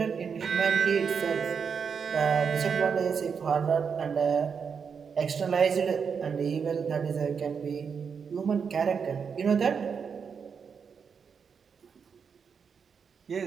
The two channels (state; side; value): quieter; left; 6.3 dB